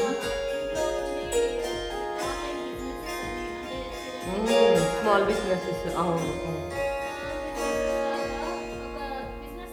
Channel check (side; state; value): both; identical; correlation 1.00